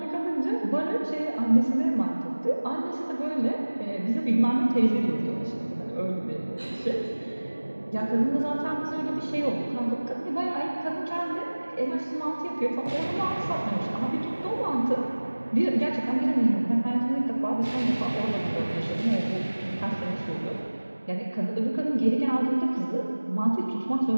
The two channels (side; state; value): both; inverted; correlation -1.00